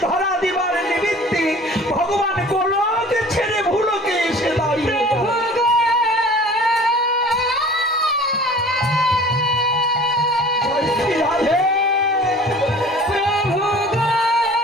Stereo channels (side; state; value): both; normal; correlation 0.45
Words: ধরা দিবার নিমিত্তে ভগবান গোলক ছেড়ে ভুলোকে এসে দাঁড়িয়ে